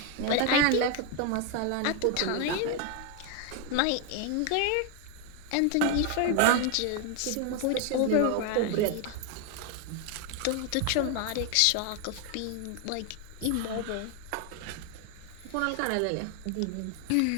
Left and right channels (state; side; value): different; both; correlation 0.01